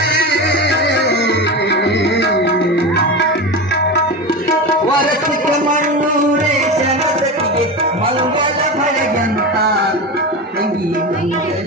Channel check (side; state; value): both; normal; correlation 0.23